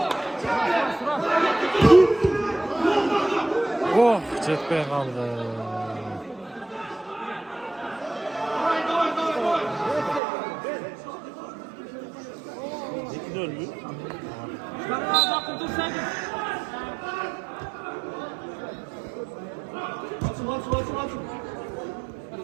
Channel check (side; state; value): left; drops out; at 10.2 s